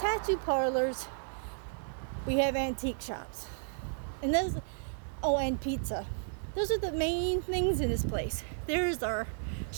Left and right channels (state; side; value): silent; left; digital silence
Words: parlors, we have antique shops. And and pizza. Those are the main things in this place. There's our